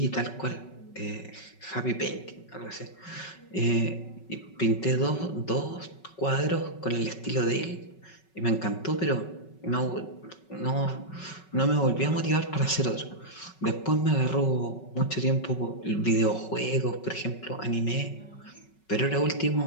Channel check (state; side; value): late; right; 5.3 ms